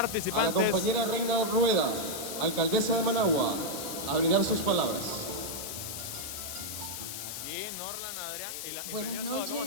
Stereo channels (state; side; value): noise; left; hiss, 6 dB below the sound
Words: compañera Reina Rueda, alcaldesa de Managua, a brindar sus palabras. Aquí Norlan, Adrián y la Buenas imprimió toda. ¿Cómo